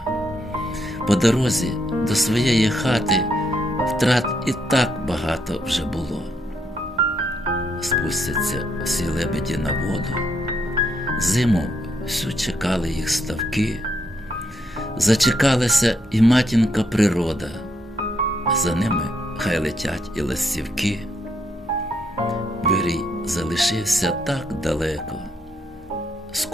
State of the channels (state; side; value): normal; both; correlation 0.76